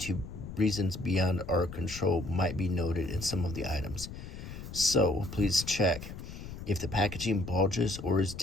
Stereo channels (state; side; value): noise; left; rumble, 11 dB below the sound